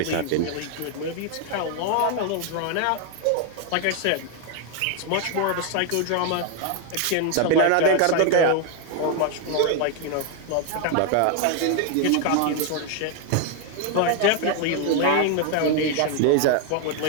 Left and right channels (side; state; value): both; different; correlation 0.01